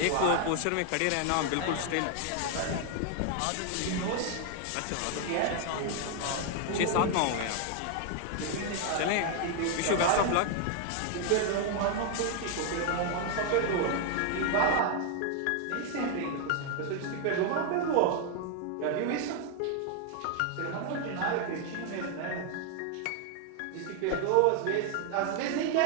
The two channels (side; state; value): both; different; correlation 0.00